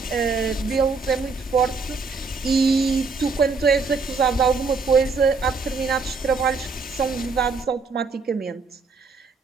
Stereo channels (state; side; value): quieter; left; 4.4 dB